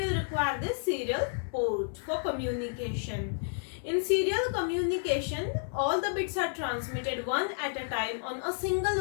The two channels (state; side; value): silent; right; 57 dB below the other